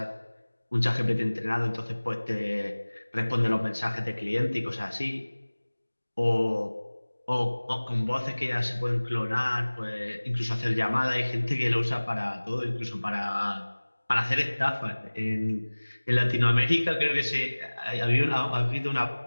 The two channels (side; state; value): both; inverted; correlation -1.00